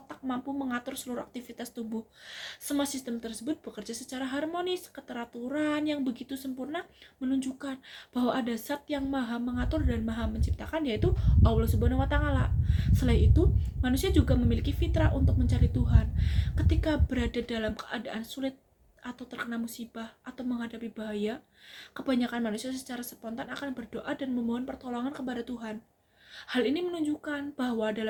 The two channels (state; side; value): identical; both; correlation 1.00